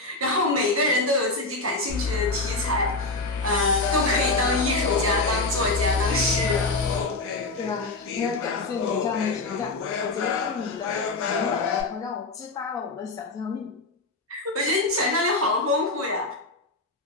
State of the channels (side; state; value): right; quieter; 3.3 dB